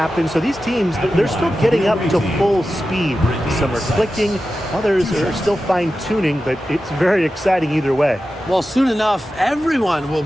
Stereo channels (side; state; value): both; normal; correlation 0.93